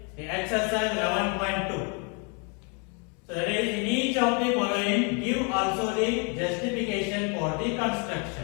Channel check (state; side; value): quieter; right; 36.1 dB